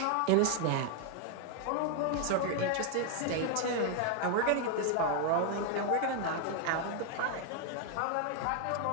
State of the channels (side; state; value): both; different; correlation 0.00